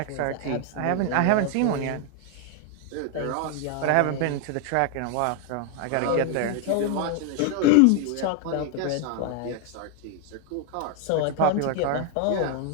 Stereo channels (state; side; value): different; both; correlation 0.01